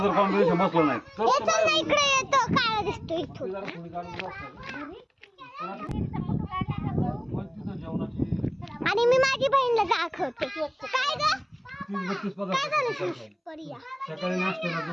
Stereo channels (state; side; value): identical; both; correlation 1.00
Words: जर कॉम्बिनेशन बसलं नाही तर इकडे येतो, काळा दिसतो इथून. आणि मी माझी बहीणला दाखवते. काय ग? काय झालं? परिया सकाळी नाश्त्याला